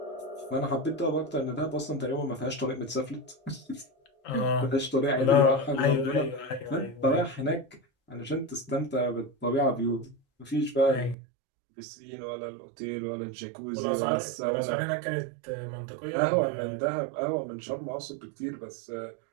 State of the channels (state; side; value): drops out; left; at 11.2 s